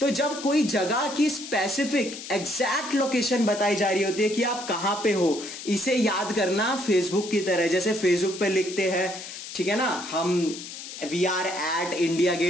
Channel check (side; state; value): left; noise; hiss, 11 dB below the sound